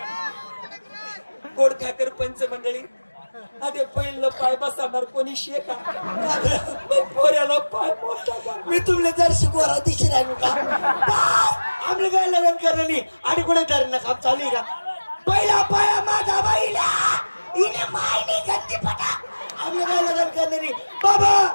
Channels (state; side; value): inverted; both; correlation -1.00